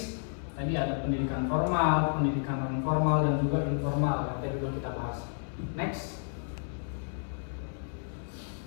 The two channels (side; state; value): right; silent; 57 dB below the other